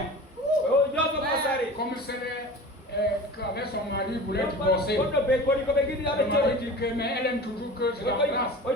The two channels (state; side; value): normal; both; correlation 0.36